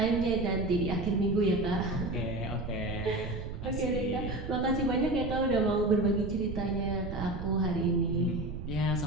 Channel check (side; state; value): right; noise; rumble, 7 dB below the sound